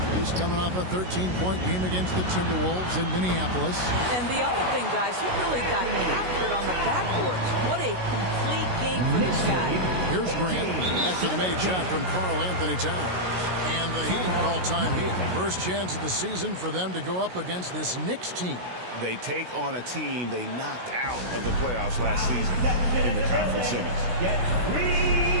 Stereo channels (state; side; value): late; left; 16 ms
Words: He's coming off a 13-point game against the Timberwolves in Minneapolis. And the other thing, guys, he really got after it on the backboards. What a complete game for this guy. Here's Grant after the made shot from Karl Anthony Towns. And the Heat call time here. First chance of the season for them to go up against this Knicks team. They take on a team they knocked out of the playoffs last season in the conference semis. Get 3